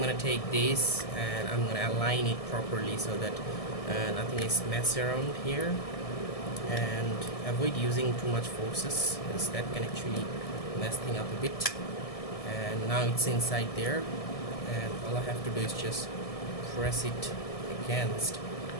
gonna take this and I'm gonna align it properly so that nothing is messed around here, and avoid using too much forces, because that can actually mess things up a bit. And now it's inside there, and all I have to do is just press it against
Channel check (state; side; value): late; right; 1.7 ms